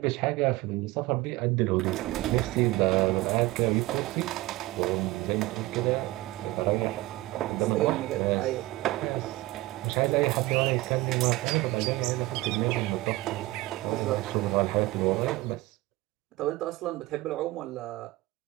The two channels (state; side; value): quieter; left; 19.2 dB